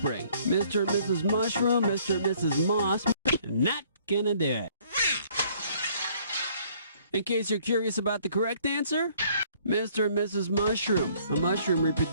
Mr. and Mrs. Mushroom, Mr. and Mrs. Moss. Not gonna do it. In case you're curious about the correct answer, Mr. and Mrs. Mushroom. A mushroom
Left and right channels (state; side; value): inverted; both; correlation -0.61